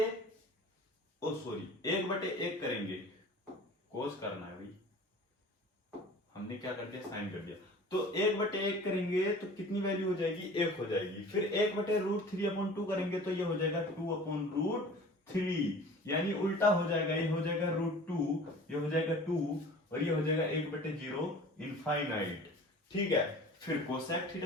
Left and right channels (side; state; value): both; normal; correlation 0.43